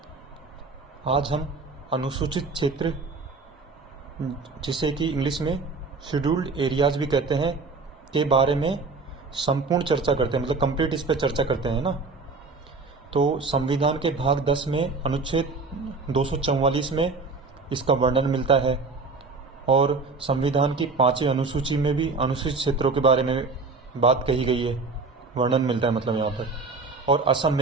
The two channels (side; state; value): left; quieter; 4.1 dB